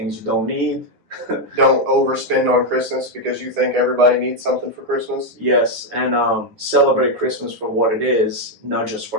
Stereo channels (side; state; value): left; late; 9.9 ms